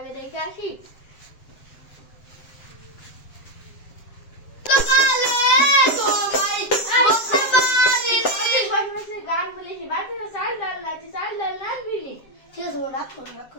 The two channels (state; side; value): late; right; 7.6 ms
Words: রেখে আসি গান বলেছি বাচ্চারা চাল ডাল না চাল ডাল না আনবি নি ঠিক আছে রাখো রাখো